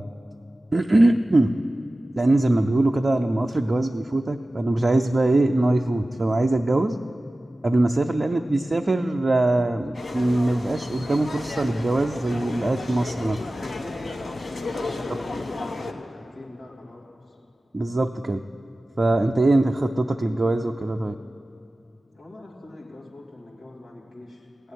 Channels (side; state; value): both; normal; correlation 0.96